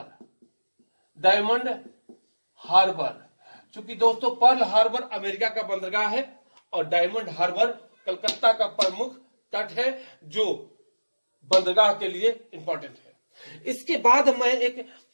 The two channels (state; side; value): inverted; both; correlation -1.00